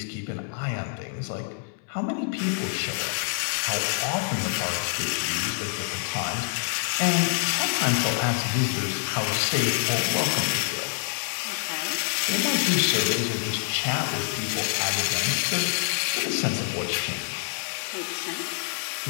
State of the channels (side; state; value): right; silent; 61 dB below the other